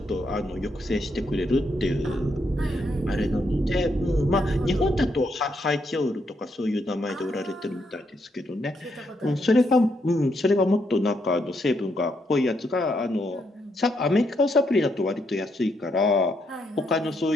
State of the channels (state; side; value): normal; both; correlation 0.77